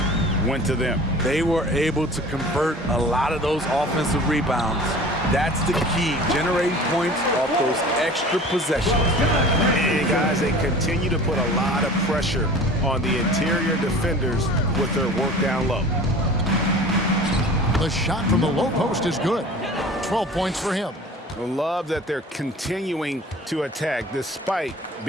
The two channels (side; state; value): both; normal; correlation 0.42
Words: went to them. They were able to convert a lot of those offensive rebounds. That's the key, generating points off those extra possessions. And guys, they continue to put a lot of pressure on the interior defenders with their work down low. The shot from the low post is good. 12 points for him. I love that they're continuing to attack despite